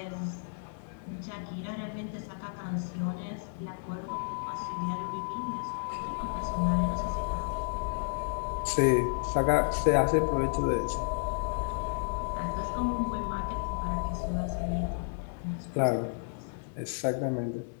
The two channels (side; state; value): right; silent; digital silence